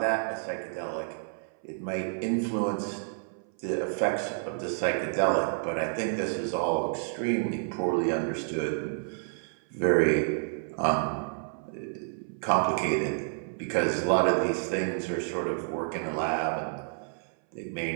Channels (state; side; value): silent; left; 58 dB below the other